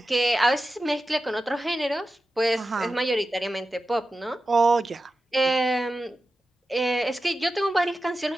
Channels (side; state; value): both; normal; correlation 0.93